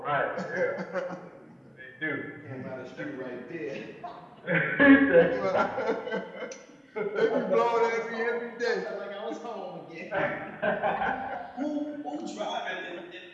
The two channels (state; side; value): identical; both; correlation 1.00